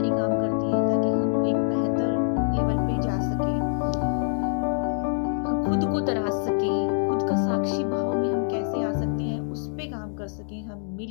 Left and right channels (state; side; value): silent; right; digital silence